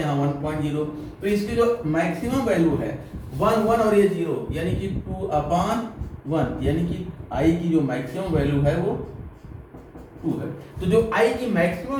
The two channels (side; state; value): both; identical; correlation 1.00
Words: 1.0, तो इसकी जो मैक्सिमम वैल्यू है 1, 1 और ये 0, यानी कि 2/1, यानी कि I की जो मैक्सिमम वैल्यू है वो 2 है। तो जो I की मैक्सिमम